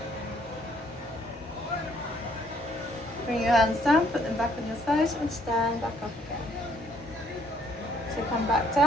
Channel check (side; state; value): both; normal; correlation 0.66